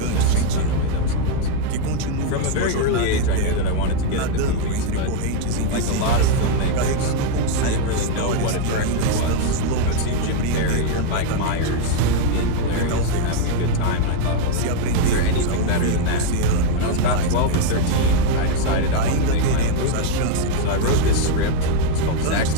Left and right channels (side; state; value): both; different; correlation 0.00